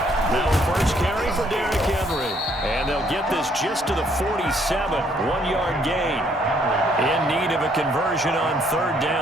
Now first carry for Derrick Henry. And they'll get this just to the 47. 1-yard gain. In need of a conversion on third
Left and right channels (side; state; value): both; normal; correlation 0.67